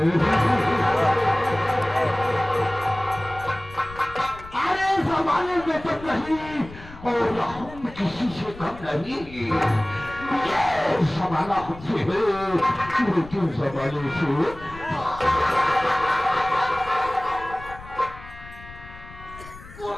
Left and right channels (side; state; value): left; noise; rumble, 17 dB below the sound